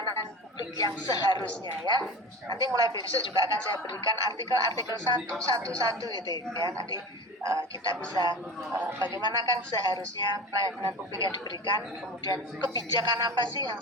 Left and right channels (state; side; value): normal; both; correlation 0.32